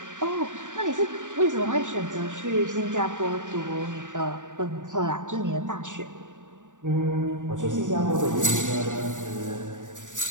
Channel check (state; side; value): late; left; 0.86 ms